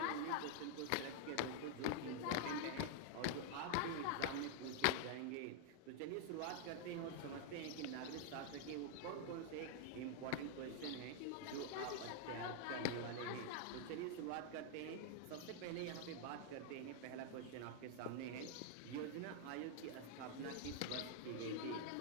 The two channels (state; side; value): different; both; correlation 0.00